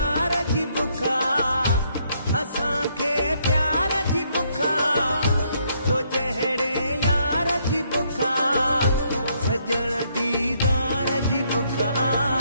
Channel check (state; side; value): inverted; both; correlation -0.71